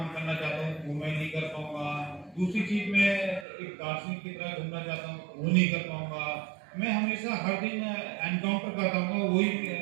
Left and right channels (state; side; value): drops out; left; at 3.5 s